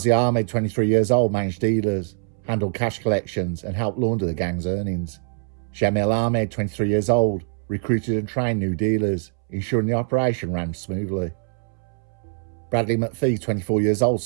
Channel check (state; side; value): silent; left; 63 dB below the other